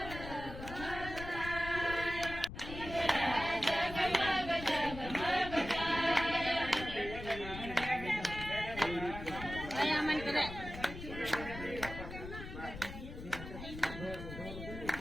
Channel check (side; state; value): left; noise; rumble, 10 dB below the sound